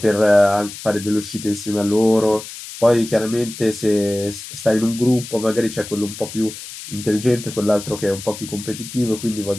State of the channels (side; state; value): left; noise; hiss, 12 dB below the sound